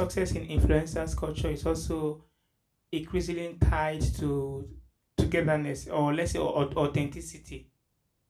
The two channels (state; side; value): identical; both; correlation 1.00